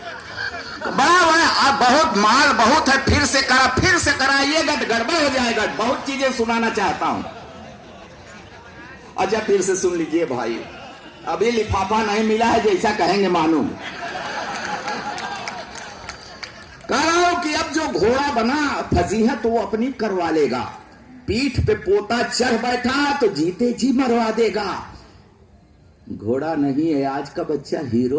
बड़ा अब बहुत माल बहुत है, फिर से कराइएगा तो गड़बड़ हो जाएगा। बहुत चीजें सुनाना चाहता हूं। अच्छा, फिर से सुन लीजिए भाई, अभी लिफाफा नहीं मिला है, जैसा कहेंगे मालूम। कह रहा हूं कि अब जो घोड़ा बना फजीहत वो अपनी करवा लेगा। पीठ पे पोता चढ़ बैठा तो जीते जी मरवा देगा। घोड़ा नहीं है आज का बच्चा,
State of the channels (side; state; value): both; identical; correlation 1.00